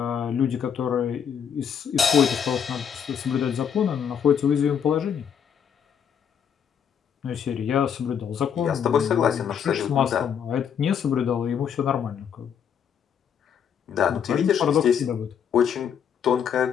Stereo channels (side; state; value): right; quieter; 7.9 dB